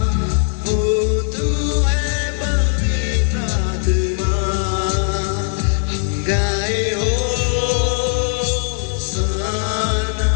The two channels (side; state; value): right; silent; digital silence